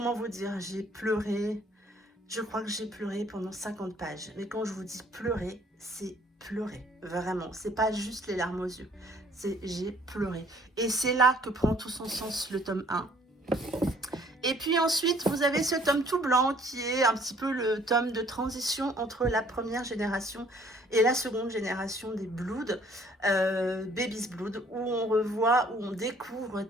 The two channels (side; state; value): both; normal; correlation 0.59